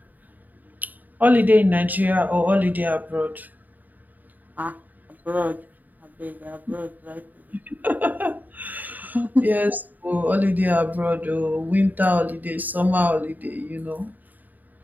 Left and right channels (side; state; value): left; late; 0.084 ms